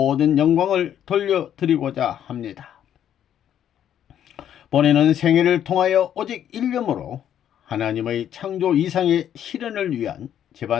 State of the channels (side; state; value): right; quieter; 10.1 dB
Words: 영광을 돌려드리고자 합니다. 본인은 생애를 통하여 오직 일념으로 하나님의 창조 이상의 실현을 위한